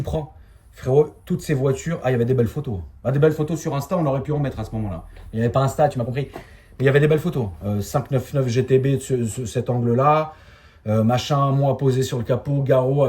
prends. Frérot, toutes ces voitures, il y avait des belles photos. Bah, des belles photos sur Insta, on aurait pu en mettre à ce moment-là. Il n'y avait pas Insta, tu m'as compris. Mais il y avait des belles photos. 599 GTB, cet angle-là. Machin, moi posé sur le capot, Garo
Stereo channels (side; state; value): both; identical; correlation 1.00